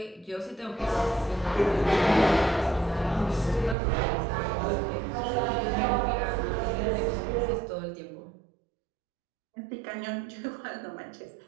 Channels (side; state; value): left; drops out; at 3.8 s